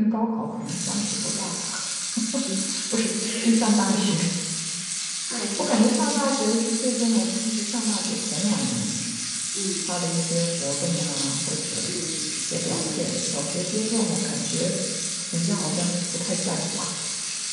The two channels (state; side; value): identical; both; correlation 1.00